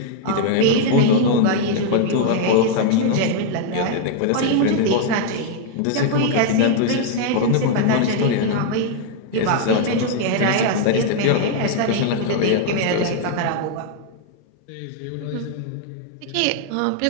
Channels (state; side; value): different; both; correlation 0.00